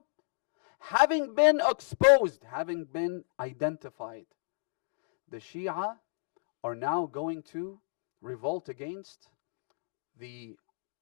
Having been exposed, having been identified, the Shia are now going to revolt against the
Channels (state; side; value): silent; right; digital silence